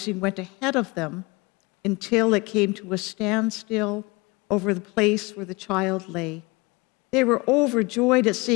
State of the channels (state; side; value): quieter; right; 25.7 dB